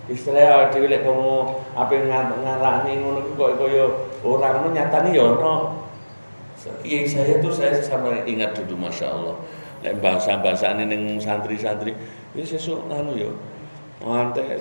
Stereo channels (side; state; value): both; inverted; correlation -1.00